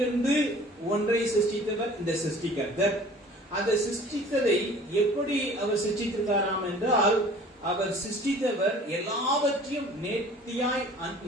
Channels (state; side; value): normal; both; correlation 0.48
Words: ஒன்றை சிருஷ்டித்தவர் இந்த சிருஷ்டி கர்த்தர். அந்த சிருஷ்டித்ததை எப்படி அவர் சிருஷ்டித்திருக்காராம் என்றால், அவர் சிருஷ்டித்தவர் எல்லாவற்றையும் நேர்த்தியாய்